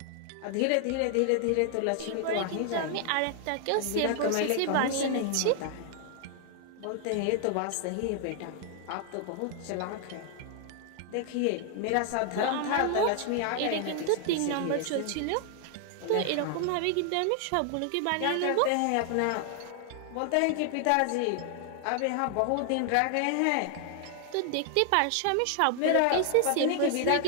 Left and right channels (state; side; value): different; both; correlation 0.00